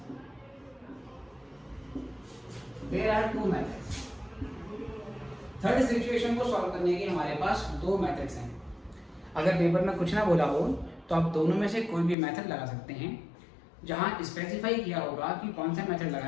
there are two methods. Third situation को सॉल्व करने के हमारे पास दो मेथड्स हैं। अगर पेपर में कुछ ना बोला हो तो आप दोनों में से कोई भी मेथड लगा सकते हैं। जहां स्पेसिफाई किया होगा कि कौन सा मेथड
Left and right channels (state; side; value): drops out; right; at 12.2 s